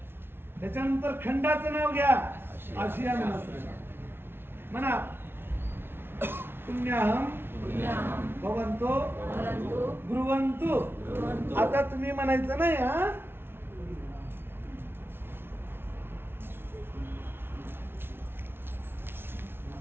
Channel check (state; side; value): late; left; 0.11 ms